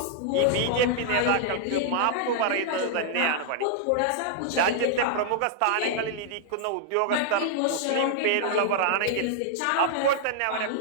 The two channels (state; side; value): different; both; correlation -0.01